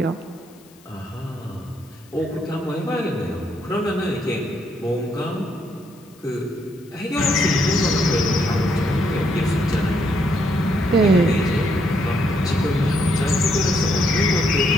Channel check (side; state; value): left; noise; hiss, 28 dB below the sound